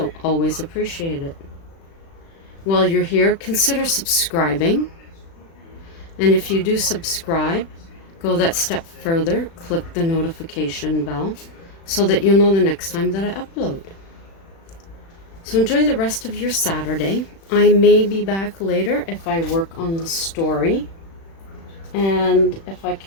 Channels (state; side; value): late; right; 36 ms